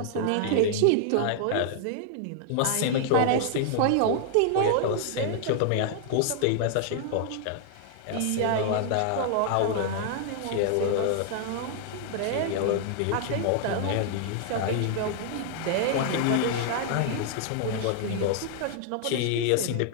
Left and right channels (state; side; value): different; both; correlation 0.00